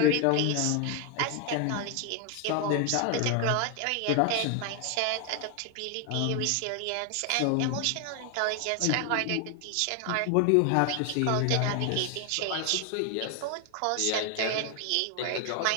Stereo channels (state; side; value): different; both; correlation 0.01